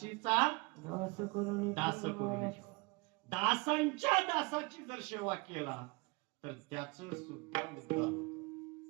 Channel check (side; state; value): left; quieter; 26.2 dB